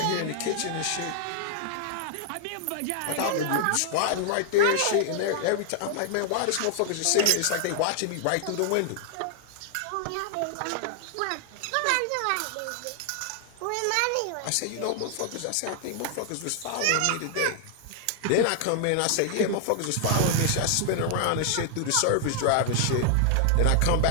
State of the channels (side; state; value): both; different; correlation 0.00